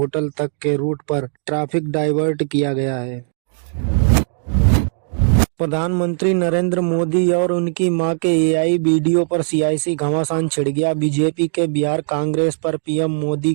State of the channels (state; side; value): silent; left; digital silence